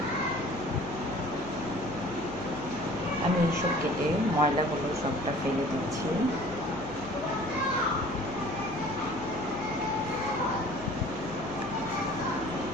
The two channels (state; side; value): noise; left; hum, 14 dB below the sound